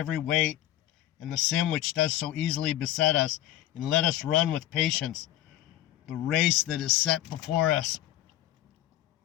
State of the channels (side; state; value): right; quieter; 13.5 dB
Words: weight and the sin which does so easily beset us, and let us run with patience the race that is set before us,